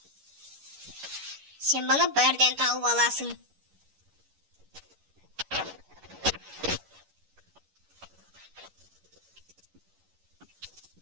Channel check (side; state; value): left; late; 11 ms